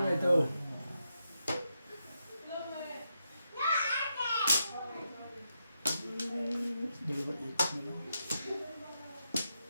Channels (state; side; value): inverted; both; correlation -0.84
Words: ito. Dalawa ikot na lang.